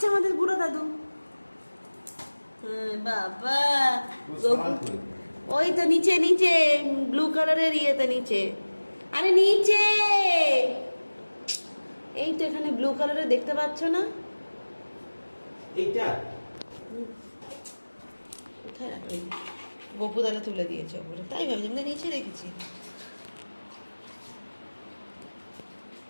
আমাদের বুড়ো দাদু। বাবা, ওই তো নিচে নিচে ব্লু কালারের ইয়েতে নিচে, আরে নিচে, এই তো এখানে ব্লু কালারের দেখতে পাচ্ছ না? এইটা কোথায় রাখবে? গপু দাদা তুলে দিয়েছে ওপরে, তাই ভাবছি আমরা নিচে রেখেছি।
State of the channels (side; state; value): both; inverted; correlation -1.00